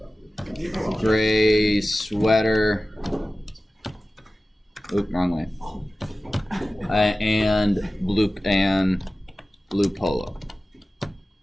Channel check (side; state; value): both; normal; correlation 0.96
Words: sweater, oop, wrong way, and blue polo.